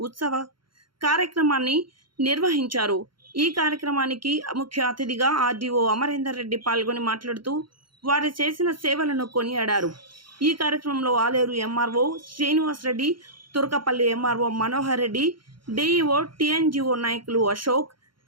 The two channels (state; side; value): late; left; 0.73 ms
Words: ఉత్సవ కార్యక్రమాన్ని నిర్వహించారు. ఈ కార్యక్రమానికి ముఖ్య అతిథిగా ఆర్డీఓ అమరేందర్ రెడ్డి పాల్గొని మాట్లాడుతూ వారు చేసిన సేవలను కొనియాడారు. ఈ కార్యక్రమంలో Aleru MRO Srinivas Reddy, Turkapalli MRO Manohar Reddy, DEO TNGO నాయకులు Ashok,